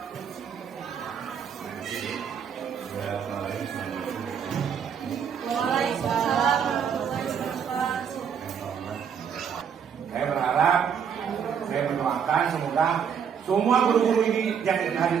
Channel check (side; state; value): left; quieter; 7.5 dB